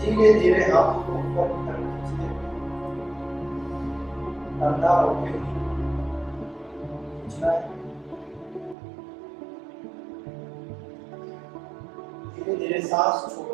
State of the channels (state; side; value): drops out; left; at 8.8 s